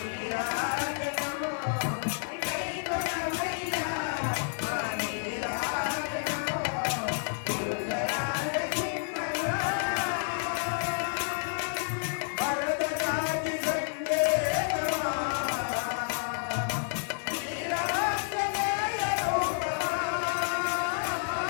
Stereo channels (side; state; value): right; silent; 58 dB below the other